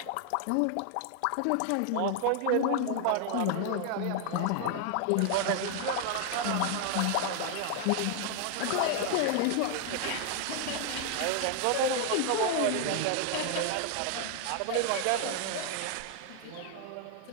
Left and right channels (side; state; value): both; different; correlation 0.00